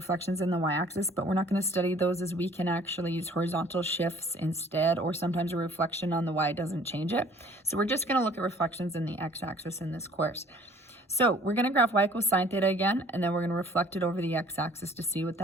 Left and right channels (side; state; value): both; normal; correlation 0.54